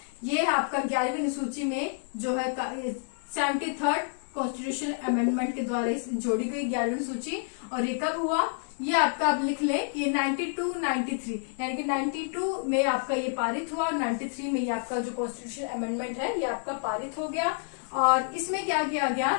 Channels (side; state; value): right; silent; 59 dB below the other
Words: ये आपका 11वीं अनुसूची में जो है 73rd कॉन्स्टिट्यूशन अमेंडमेंट के द्वारा जोड़ी गई 11वीं अनुसूची। और ये कब हुआ, ये आपका आप लिख लें कि 92-93 यानी कि 92 में आपका ये पारित हुआ और 93 में ये आपका जो कॉन्स्टिट्यूशन अमेंडमेंट है ये आपका पारित हो गया। और इसमें क्या किया गया,